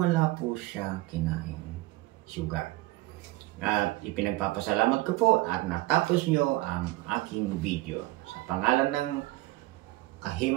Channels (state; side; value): quieter; left; 19.0 dB